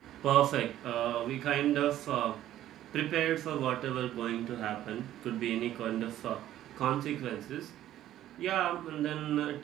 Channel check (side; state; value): left; quieter; 12.8 dB